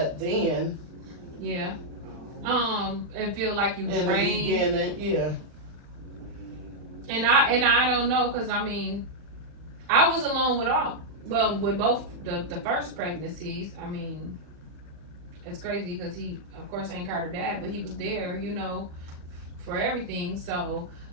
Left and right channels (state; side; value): late; left; 39 ms